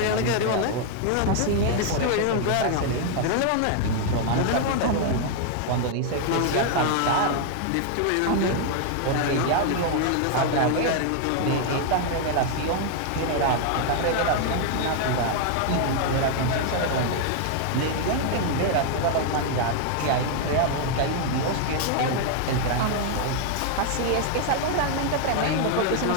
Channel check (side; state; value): both; different; correlation 0.00